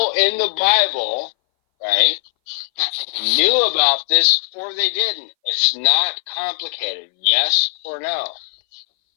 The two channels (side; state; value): right; silent; 62 dB below the other